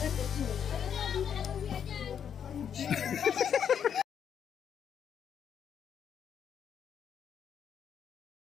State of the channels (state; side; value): quieter; right; 8.2 dB